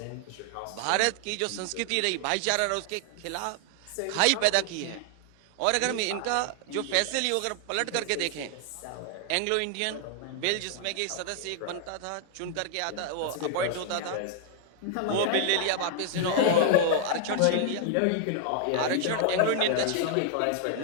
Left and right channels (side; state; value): both; different; correlation 0.00